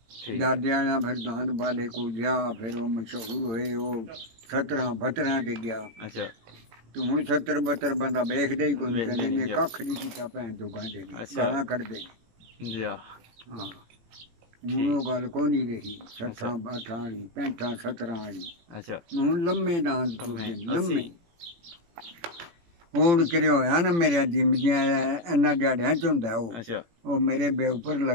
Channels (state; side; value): late; left; 18 ms